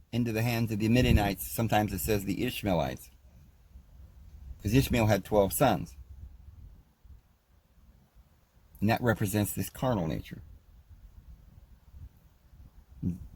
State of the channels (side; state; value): both; identical; correlation 1.00